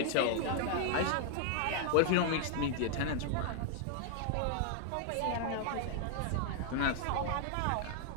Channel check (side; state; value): both; different; correlation 0.00